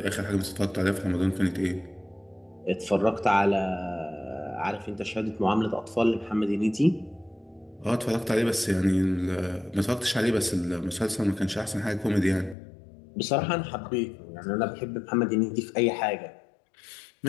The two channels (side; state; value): right; drops out; at 12.6 s